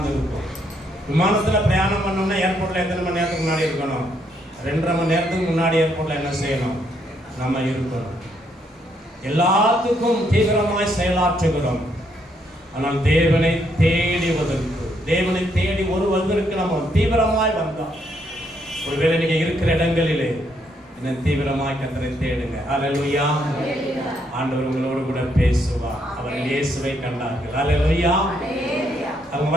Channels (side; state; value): both; normal; correlation 0.74